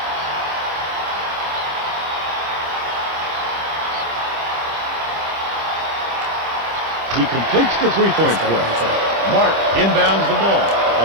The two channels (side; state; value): left; late; 25 ms